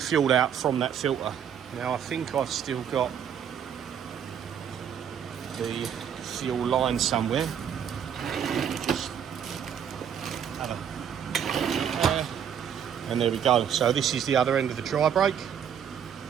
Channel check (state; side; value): quieter; left; 8.5 dB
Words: out from that filter. Now I think I've still got the fuel line somewhere. Just have a, and there we go. So this is the other end of the dry brake,